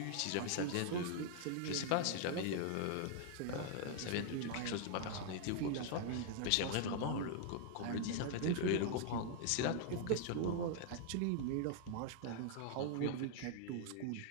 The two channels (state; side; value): different; both; correlation 0.00